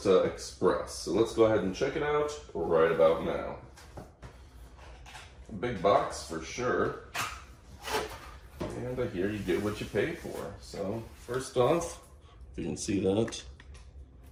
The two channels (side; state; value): both; identical; correlation 1.00